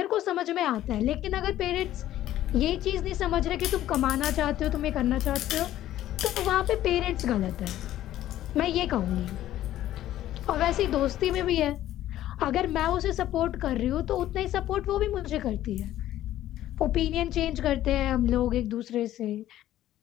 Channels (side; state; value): right; quieter; 13.3 dB